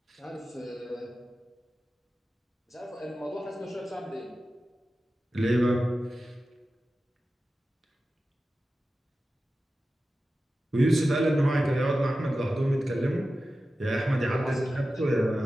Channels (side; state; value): both; normal; correlation 0.94